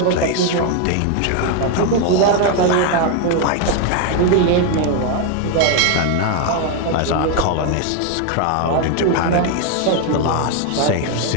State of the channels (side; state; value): both; different; correlation 0.01